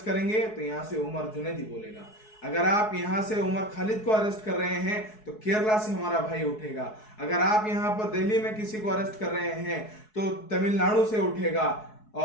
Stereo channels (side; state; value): right; late; 4.7 ms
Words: करेंगे तो यहाँ से उमर जुनैदी बोलेगा। अगर आप यहाँ से उमर खालिद को अरेस्ट कर रहे हैं तो केरला से हमारा भाई उठेगा। अगर आप यहाँ पर दिल्ली में किसी को अरेस्ट कर रहे हैं तो तमिलनाडु से उठेगा,